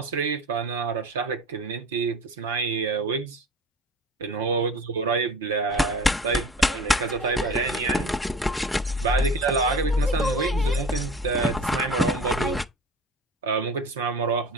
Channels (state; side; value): normal; both; correlation 0.38